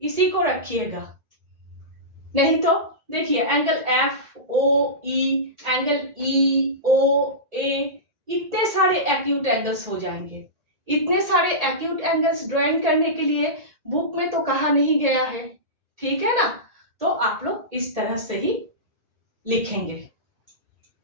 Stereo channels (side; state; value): left; late; 1.8 ms